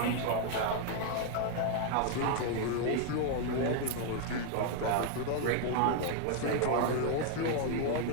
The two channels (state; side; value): different; both; correlation 0.00